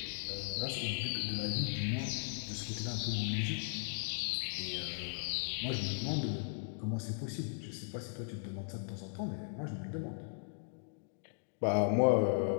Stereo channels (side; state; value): right; silent; digital silence